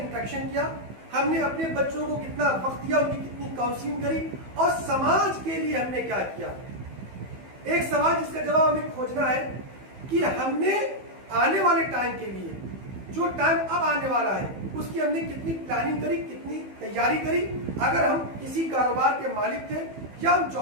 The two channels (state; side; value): late; left; 15 ms